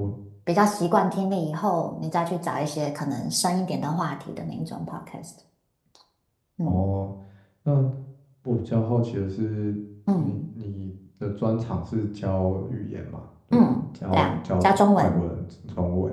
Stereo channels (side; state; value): both; identical; correlation 1.00